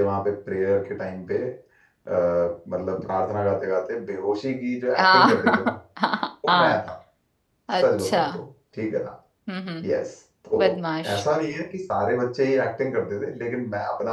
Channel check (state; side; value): identical; both; correlation 1.00